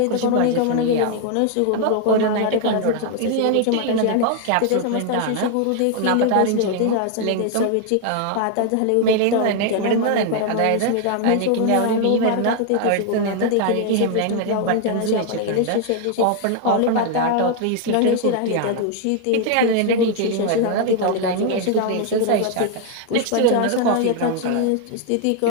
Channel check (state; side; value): different; both; correlation 0.00